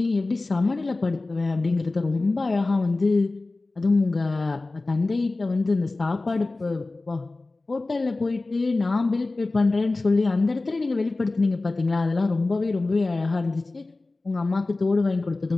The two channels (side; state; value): right; quieter; 3.2 dB